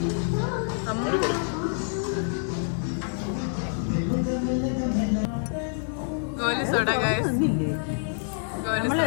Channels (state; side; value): silent; right; digital silence